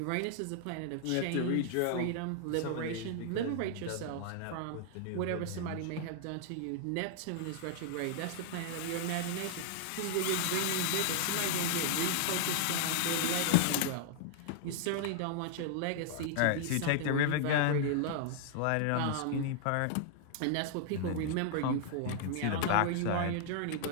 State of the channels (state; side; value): different; both; correlation -0.01